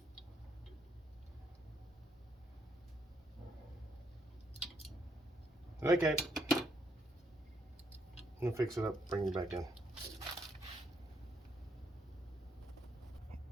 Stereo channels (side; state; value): both; normal; correlation 0.74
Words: Okay. I'm gonna fix it up, bring it back in.